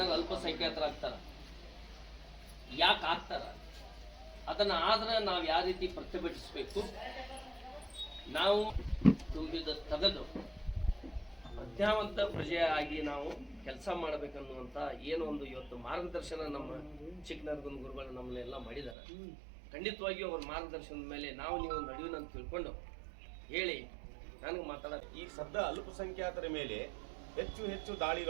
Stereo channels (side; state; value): left; drops out; at 18.9 s